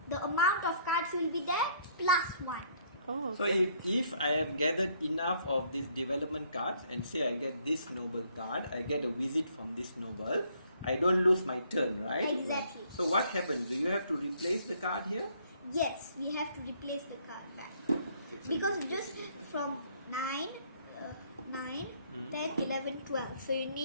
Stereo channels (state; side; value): inverted; both; correlation -0.64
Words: the amount of cards will be there +1. Oh. So if I have gathered enough of these development cards and say I get this noble card, I get a visit from this noble, I don't lose my turn, right? Exactly. So what happens? Do you have to replace the card here? Yes, we have to replace the card back. Okay, so Because you- just from 9, 9, Mhm. 10, 11, 12. So you